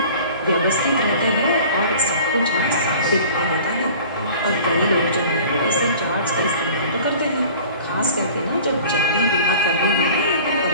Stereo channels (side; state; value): both; inverted; correlation -0.44